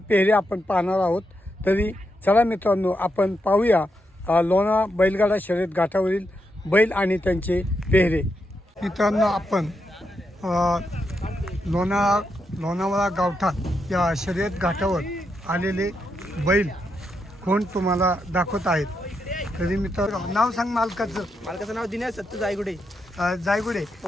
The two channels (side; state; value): both; normal; correlation 0.83